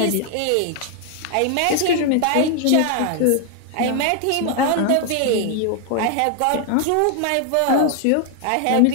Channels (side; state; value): both; different; correlation 0.00